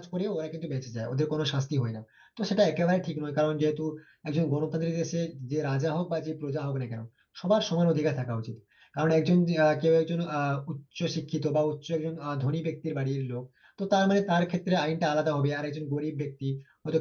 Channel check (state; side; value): identical; both; correlation 1.00